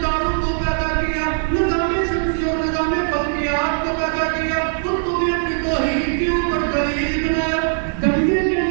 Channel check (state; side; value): silent; left; digital silence